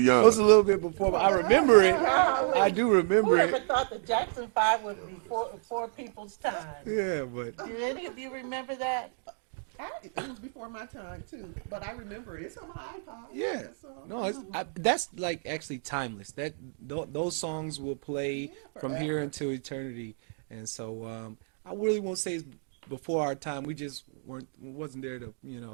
young. was a little bit before. I remember it. I do Who remember ever it. thought the Jackson Five would be before people's time? Yeah, but Do any of you remember that? It was before my time, too, but I remember it. It's on my iPod, yeah. that song. No, that's like actually timeless. Those songs will play Yeah, from here forever. until eternity. And so I really won't say it's before our time. We just wasn't there to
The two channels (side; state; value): left; silent; 58 dB below the other